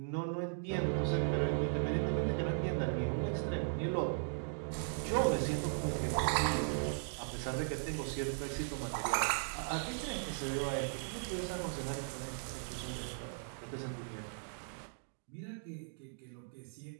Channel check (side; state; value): left; silent; digital silence